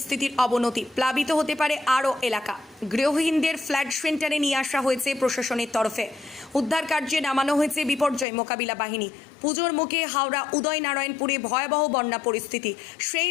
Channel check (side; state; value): right; drops out; at 8.2 s